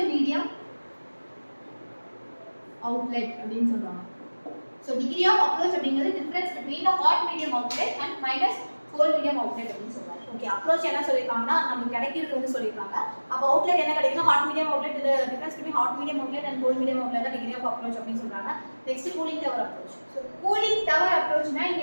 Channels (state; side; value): inverted; both; correlation -1.00